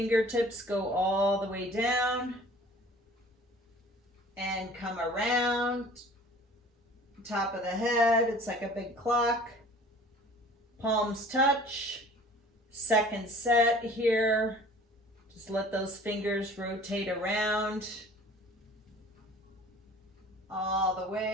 go all the way down and come around. top of the head. It's like a big clock. Palms touch. Second set here. Just let those fingers rotate around all the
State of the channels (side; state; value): both; normal; correlation 0.48